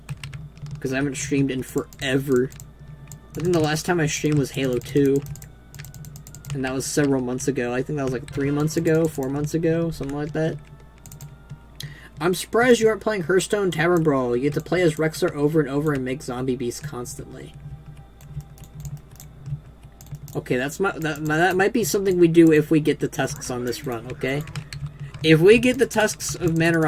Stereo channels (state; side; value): identical; both; correlation 1.00